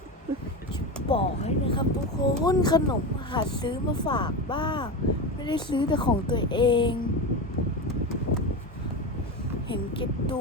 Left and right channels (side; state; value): both; normal; correlation 0.21